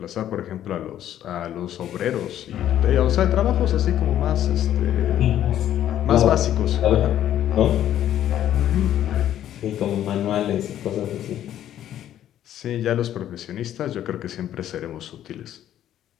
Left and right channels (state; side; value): quieter; right; 11.5 dB